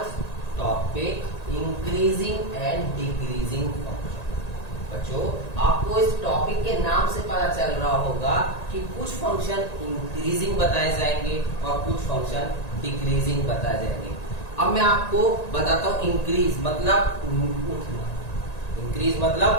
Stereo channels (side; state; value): right; late; 1.9 ms